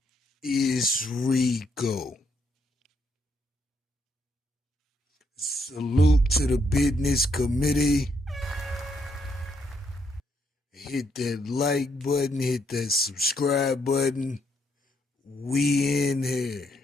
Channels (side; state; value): both; normal; correlation 0.74